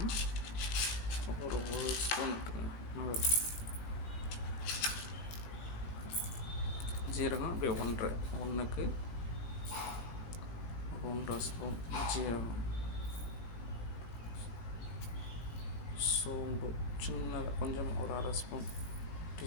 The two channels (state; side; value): late; right; 19 ms